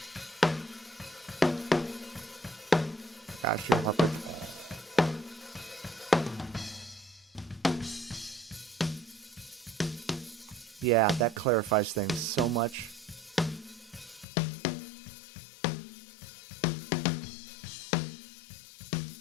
Gosh, you're puppet. Yeah, that clarifies things so much. You can...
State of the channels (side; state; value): right; drops out; at 14.2 s